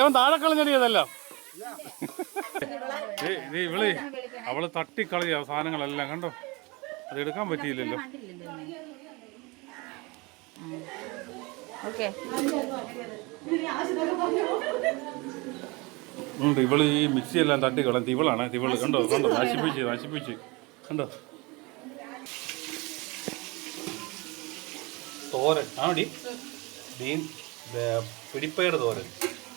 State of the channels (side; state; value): left; quieter; 25.9 dB